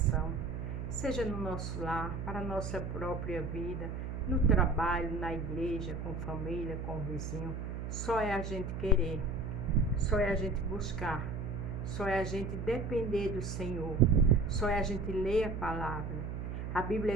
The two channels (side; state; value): right; noise; hum, 5 dB below the sound